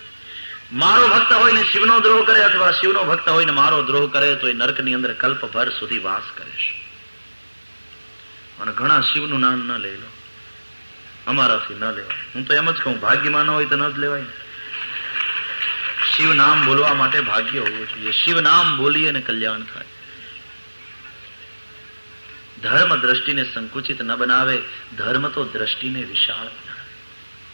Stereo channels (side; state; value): both; inverted; correlation -1.00